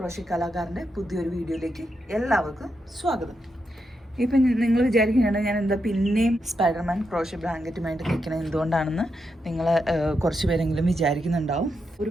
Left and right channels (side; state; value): both; normal; correlation 0.84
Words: കലാകാരൻ്റെ പുതിയൊരു വീഡിയോയിലേക്ക് എല്ലാവർക്കും സ്വാഗതം. ഇപ്പം നിങ്ങൾ വിചാരിക്കുകയാണ് ഞാൻ എന്താ പിന്നെയും സ്പൈഡർമാൻ ക്രോഷ്യ ബ്ലാങ്കറ്റുമായിട്ട് നിൽക്കണത് എന്തുകൊണ്ടാണെന്ന് നിങ്ങൾ കുറച്ച് പേരെങ്കിലും വിചാരിക്കുന്നുണ്ടാവും.